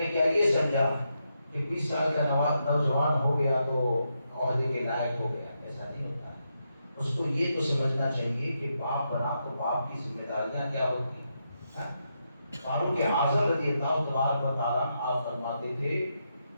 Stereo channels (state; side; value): inverted; both; correlation -0.83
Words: کیا یہ سمجھا کہ 20 سال کا نوجوان ہو گیا تو عہدے کے لائق ہو گیا؟ ایسا نہیں ہوتا ہے. اس کو یہ تو سمجھنا چاہیے کہ باپ بنا تو باپ کی ذمہ داریاں کیا ہوتی ہیں. فاروق اعظم رضی اللہ تبارک و تعالیٰ آپ فرماتے تھے